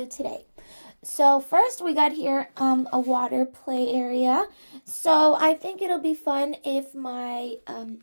today. So first we got here a water play area. So I think it'll be fun if my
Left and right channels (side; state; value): both; inverted; correlation -1.00